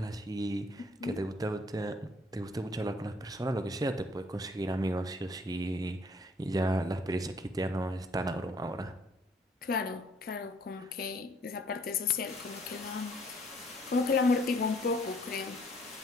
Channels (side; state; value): both; normal; correlation 0.61